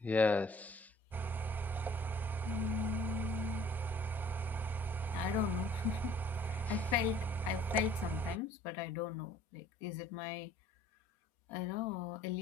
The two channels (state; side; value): normal; both; correlation 0.55